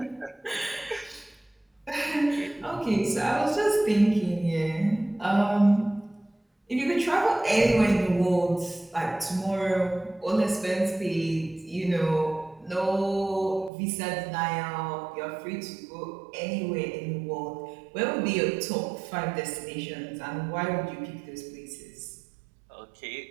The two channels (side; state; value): left; drops out; at 13.7 s